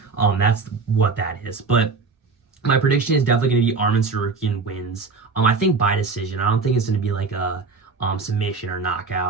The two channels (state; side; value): quieter; left; 4.5 dB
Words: that's what that is. But my prediction is definitely going to be Arman Tsarukyan wins. I think by decision. I don't think it's going to be like a submission or